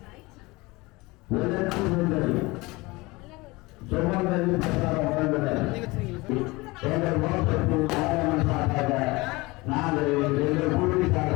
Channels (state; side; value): quieter; right; 22.9 dB